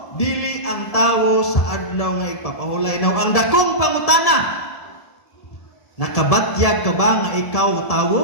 Dili ang tawo sa adlaw nga ipapahulay. Now, ang dakong pangutana, nakabatyag ka ba nga ikaw tawo?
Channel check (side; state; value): right; late; 1.7 ms